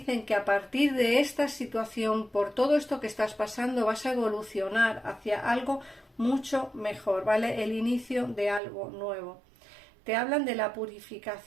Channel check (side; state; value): left; drops out; at 8.6 s